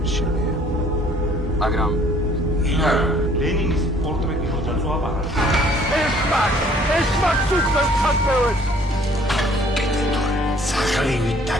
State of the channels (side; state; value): both; normal; correlation 0.58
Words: შენია. მაგრამ ლენინის პორტრეტი როცა წვაპარა. ეშმაკს უცხოს ხასმევებს. სახლივით